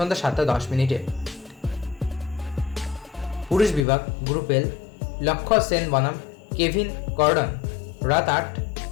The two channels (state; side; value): drops out; right; at 3.9 s